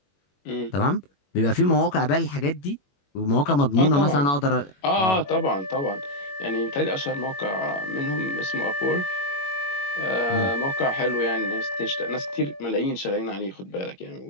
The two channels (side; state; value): right; late; 21 ms